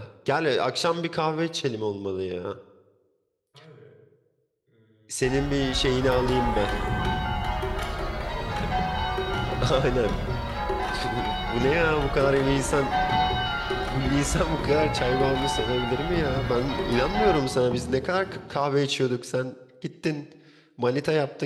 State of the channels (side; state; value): both; identical; correlation 1.00